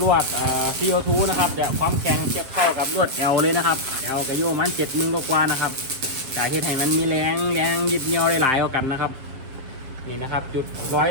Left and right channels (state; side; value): late; left; 7.4 ms